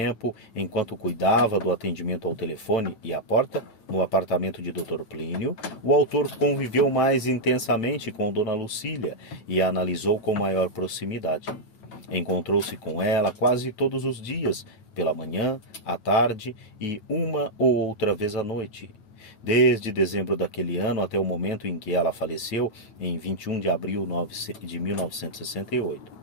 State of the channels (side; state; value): right; late; 8.9 ms